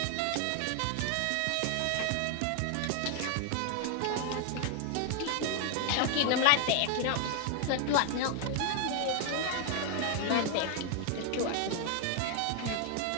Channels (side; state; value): both; different; correlation 0.00